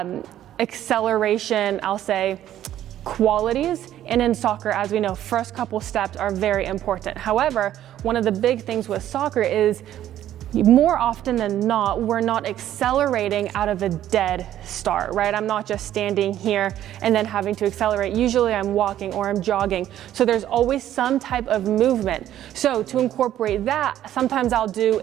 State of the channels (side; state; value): left; quieter; 12.1 dB